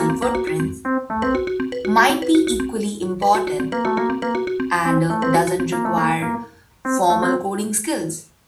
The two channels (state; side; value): identical; both; correlation 1.00